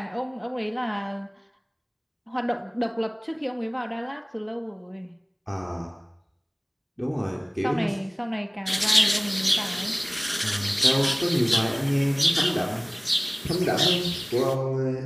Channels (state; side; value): identical; both; correlation 1.00